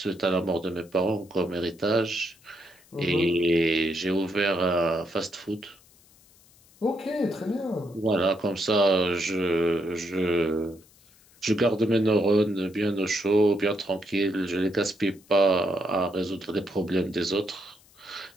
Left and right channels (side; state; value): left; noise; hiss, 28 dB below the sound